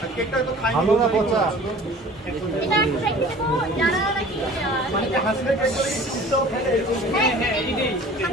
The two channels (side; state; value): both; normal; correlation 0.46